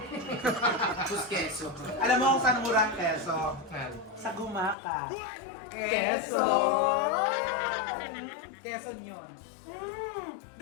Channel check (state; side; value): drops out; right; at 4.8 s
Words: Sus keso. Alam mo kung saan mura ang keso? Saan? Sa Gumaka. Keso! Keso yun.